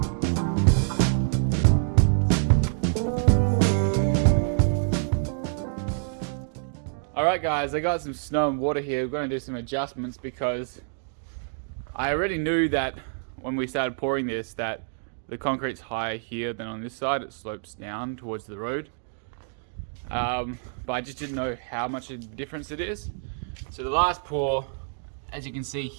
Alright guys, I got some snow and water here. We're going to do some adjustments because I already knew that when we started pouring this that the concrete's higher here than on this side. It slopes down towards the road. But I just didn't know how much of a difference it is. So the last pour, as you can see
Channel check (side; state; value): left; silent; digital silence